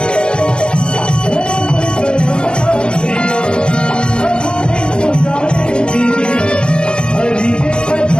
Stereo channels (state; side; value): late; right; 0.047 ms